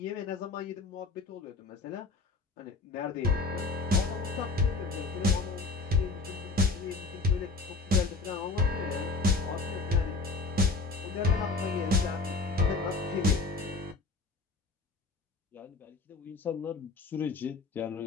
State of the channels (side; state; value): right; quieter; 3.9 dB